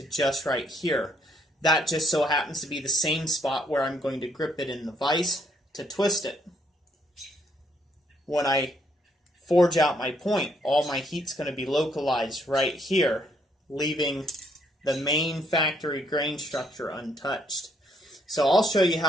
just right here. That just so happens to be the same spot where I'm going to grip it in the vise to twist it. When I forge out my point, all my heat's going to be localized right here, leaving the main factory grain structure untouched. So I'll show you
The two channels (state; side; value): normal; both; correlation 0.71